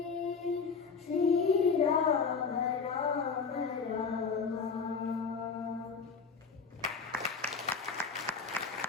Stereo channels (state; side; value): quieter; right; 5.3 dB